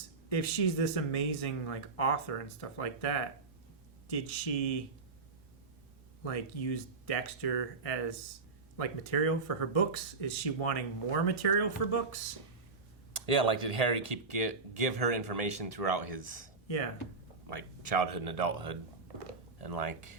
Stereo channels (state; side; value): quieter; left; 4.2 dB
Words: If she's this amazing author and stuff like that, did she use Dexter as material for her books? Is she wanting more material for books? Yeah, like did Harry give her information throughout his like childhood and adulthood, and like,